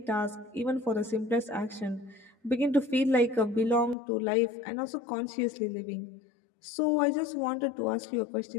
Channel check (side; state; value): right; drops out; at 4.0 s